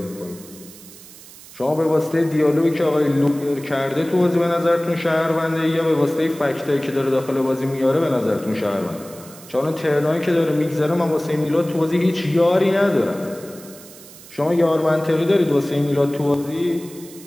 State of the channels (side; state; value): right; noise; hiss, 19 dB below the sound